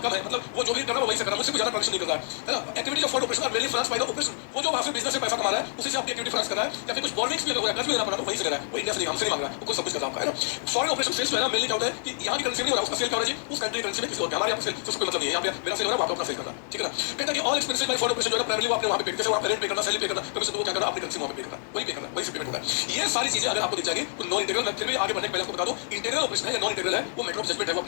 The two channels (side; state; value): right; silent; digital silence